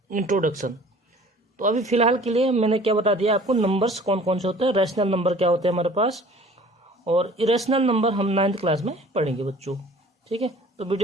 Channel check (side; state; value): both; normal; correlation 0.49